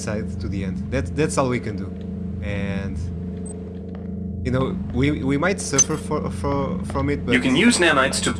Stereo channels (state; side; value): identical; both; correlation 1.00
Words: to the end. That's all we can do. And you know, we might suffer from it, but you can use nanites to